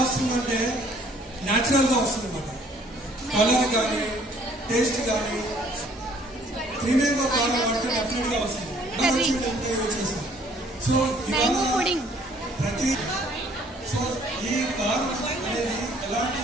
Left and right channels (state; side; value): normal; both; correlation 0.59